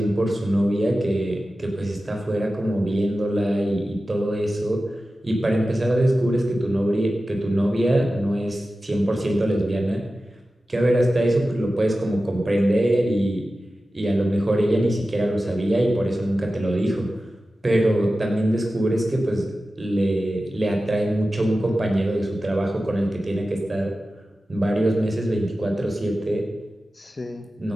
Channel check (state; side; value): normal; both; correlation 0.94